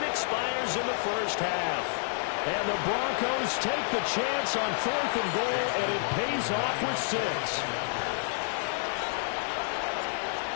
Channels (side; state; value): right; silent; digital silence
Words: expires in the first half. And the Broncos take the chance on 4th and goal, and it pays off with 6.